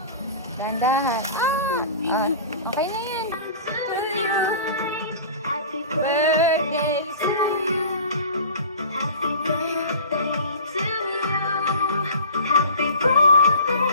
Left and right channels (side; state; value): both; inverted; correlation -0.39